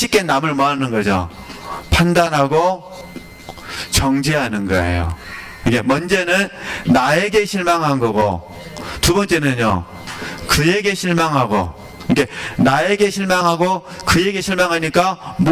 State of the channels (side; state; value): both; identical; correlation 1.00